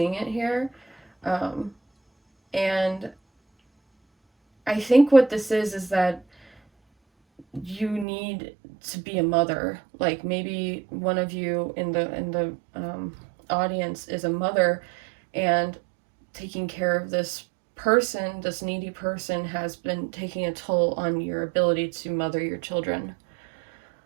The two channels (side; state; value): left; drops out; at 8.1 s